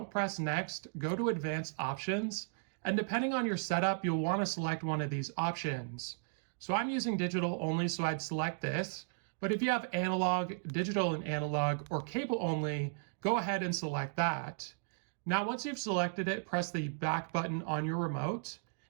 press next, go to advanced options, and depending on your setup, you'll want to select one of these options. So I'm using digital only, so I'd select this. But if you have analog, digital and analog, or cable only, go ahead and select that. Now, once you've selected it, press the back button on your remote.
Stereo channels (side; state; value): left; silent; digital silence